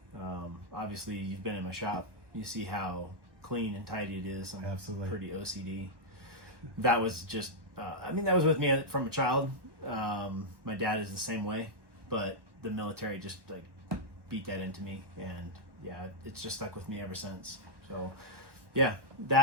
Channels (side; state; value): left; late; 1.1 ms